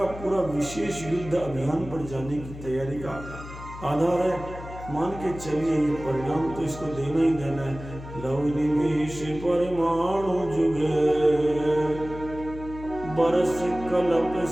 पूरा विशेष युद्ध अभियान पर जाने की तैयारी का आधार है। मान के चलिए ये परिणाम तो इसको देना ही देना है। लव निमेष परमाणु जुगे बरस कलप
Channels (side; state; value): left; noise; hum, 13 dB below the sound